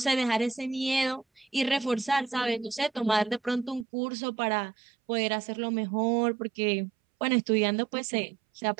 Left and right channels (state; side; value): drops out; left; at 3.9 s